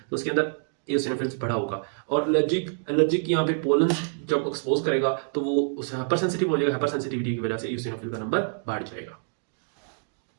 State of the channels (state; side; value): silent; left; digital silence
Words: उसके अंदर एसिनोफिल्स बढ़ा होगा। और एलर्जिक यहाँ पे पोलन जब एक्सपोज करेगा तो वो उस हाइपर सेंसिटिव हो जाएगा, हाइपर सेंसिटिविटी की वजह से एसिनोफिल का नंबर बढ़ जाएगा।